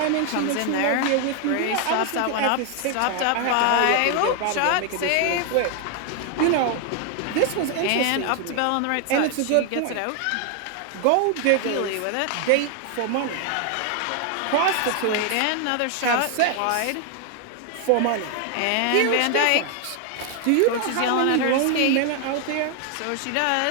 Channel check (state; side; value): different; both; correlation 0.00